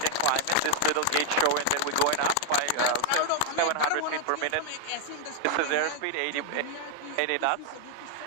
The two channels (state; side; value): different; both; correlation 0.00